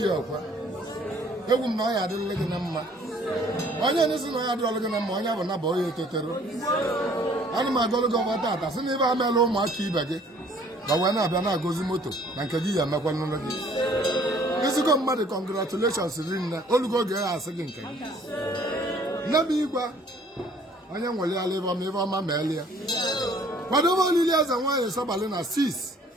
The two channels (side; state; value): both; normal; correlation 0.57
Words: ya ọkwa. Egwu m na ọ ya adịrịla gị na mma. Onye n'isi na ọ ya adịrịla gị na mma, onye bụ na bụ onye etetero. Ana m agọlụ gị ọgba tata sị na ibe amela ụmụaka ibe gị ga wee na-abịa na-agọzi moto na nke gị ya emekwa n'ụlọ gị. Ezigbo mmadụ congratulations rinne olugo oge ya asị gị nke gị. Nne m igwe onye nwere ala ịba ma ibe ọma ma eli ya. Kwadobe olili eze nwaanyị Sọbali na 6